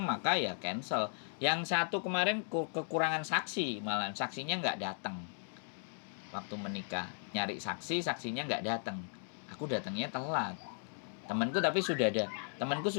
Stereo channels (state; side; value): silent; right; digital silence